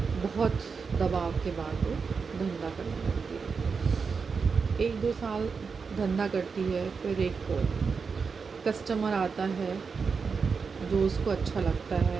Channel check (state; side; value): quieter; left; 5.3 dB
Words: बहुत दबाव के बाद वो धंधा करने लगती है। 1-2 साल धंधा करती है, फिर एक कस्टमर आता है जो उसको अच्छा लगता है,